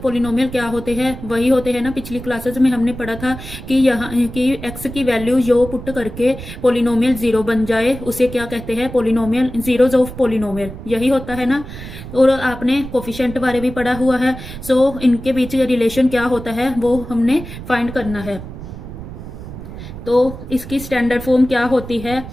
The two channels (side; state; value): right; noise; rumble, 12 dB below the sound